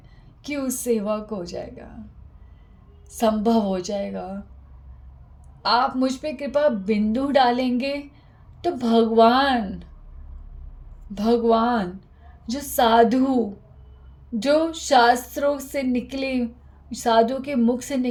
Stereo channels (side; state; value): both; identical; correlation 1.00